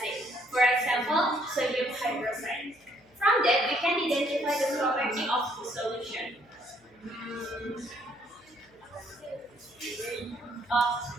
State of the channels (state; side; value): noise; left; hum, 29 dB below the sound